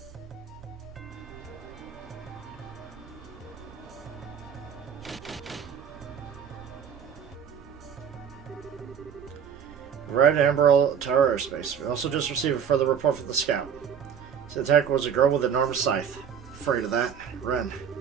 Red Emerald Tower airspace. We also just received a further report from the scout. The attacker was a girl with an enormous scythe. Afraid of that. Ren,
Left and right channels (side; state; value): left; quieter; 7.7 dB